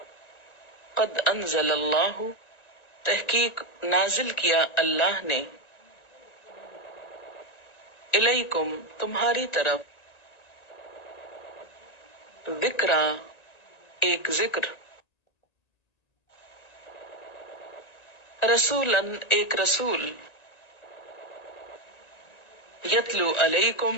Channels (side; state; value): right; late; 1.9 ms